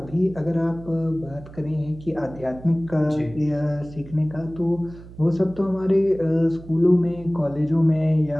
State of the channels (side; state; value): right; noise; hum, 17 dB below the sound